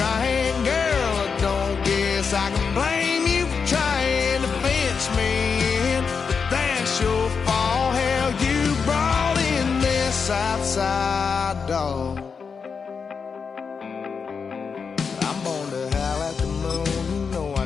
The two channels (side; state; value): right; quieter; 5.7 dB